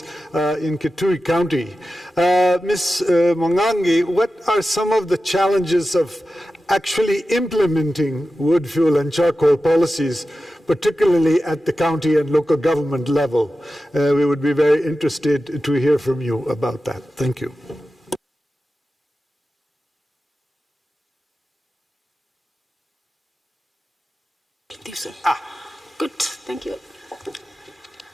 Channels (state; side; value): normal; both; correlation 0.93